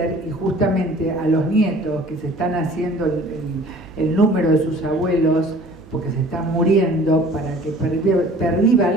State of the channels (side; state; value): right; noise; hum, 24 dB below the sound